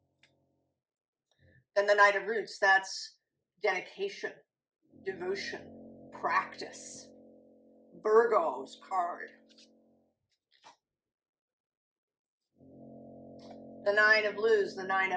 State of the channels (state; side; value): identical; both; correlation 1.00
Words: Then the Knight of Roots, that's dedication, devotion, practice. Virgo's card. The 9 of Blues, the 9